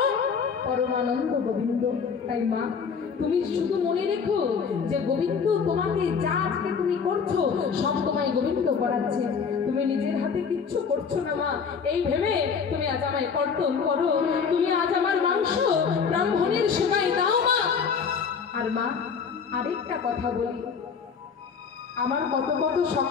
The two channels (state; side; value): quieter; right; 6.1 dB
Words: পরমানন্দ গোবিন্দ। তাই মা, তুমি শুধু মনে রেখো যে গোবিন্দ তোমাকে যা আজকে তুমি করছো সব তোমায় গোবিন্দ করাচ্ছে, তুমি নিজের হাতে কিচ্ছু করছো না মা। এই ভেবে তুমি আজ আমায় কর্তন করো, তুমি আজ আমার মাংস ব্রাহ্মণের সেবায় দাও মা। আর মা, আরেকটা কথা বলি, আমার কত কত